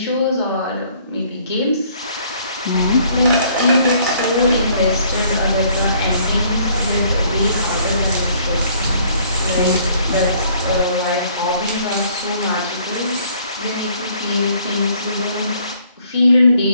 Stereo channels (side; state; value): both; inverted; correlation -0.61